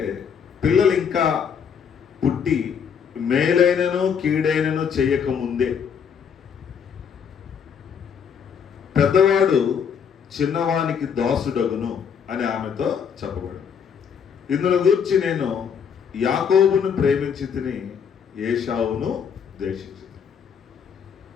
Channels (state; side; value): quieter; right; 7.2 dB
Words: పిల్లలు ఇంకా పుట్టి మేలైనను కీడైనను చేయకముందే పెద్దవాడు చిన్నవానికి దాసుడగును అని ఆమెతో చెప్పబడింది. ఇందులో గురించి నేను యాకోబును ప్రేమించి తిని ఏశావును ద్వేషించి.